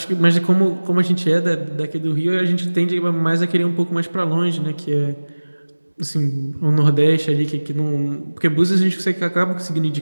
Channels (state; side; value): inverted; both; correlation -1.00